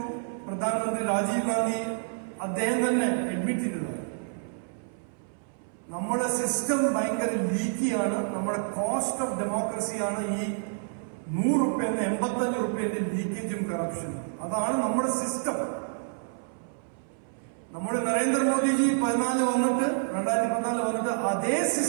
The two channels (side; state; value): left; silent; 59 dB below the other